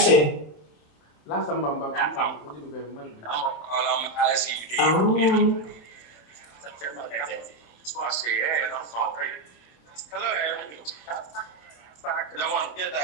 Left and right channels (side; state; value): right; late; 26 ms